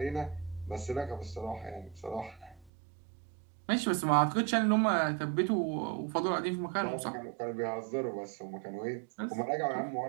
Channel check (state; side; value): drops out; left; at 2.7 s